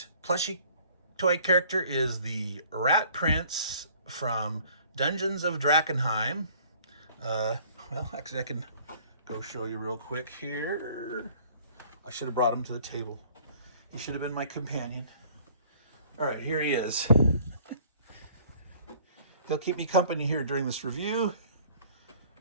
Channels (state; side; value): inverted; both; correlation -0.55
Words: plushy toy character is the Rat Prince from Dungeons of Drakkenheim. Well, actually, I can go show you real quick here. I should have brought him to the table. He should have been my companion. All right, here he is. He'll keep me company here during this review.